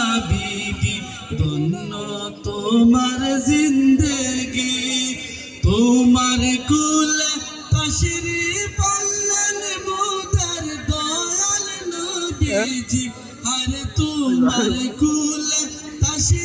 বিবি, ধন্য তোমার জিন্দেগি, তোমার কুলে তশরিফ আনলেন মোদের দয়াল নবীজি, আরে তোমার কুলে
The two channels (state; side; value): identical; both; correlation 1.00